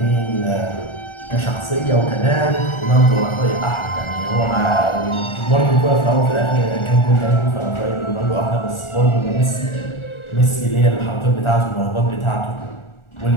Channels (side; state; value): right; late; 1.4 ms